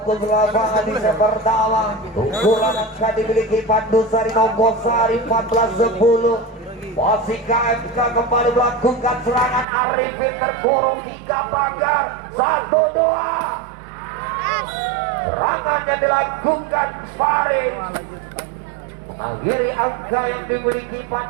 lapangan di set pertama. Unggulan angka dimiliki Pandusari Nogosari 14-10. Masih KMK kembali melakukan serangan. Arifin terkurung 3 pagar 1-2. Serangannya dilakukan Faris mengakhiri angka yang dimiliki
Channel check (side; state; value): left; drops out; at 9.7 s